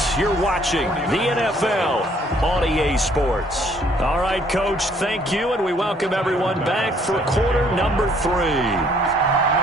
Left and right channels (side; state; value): both; normal; correlation 0.63